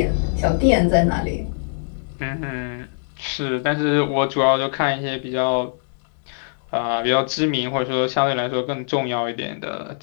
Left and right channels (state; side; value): silent; right; 64 dB below the other